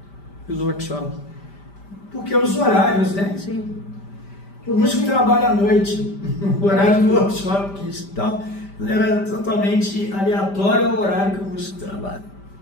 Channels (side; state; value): right; late; 5.1 ms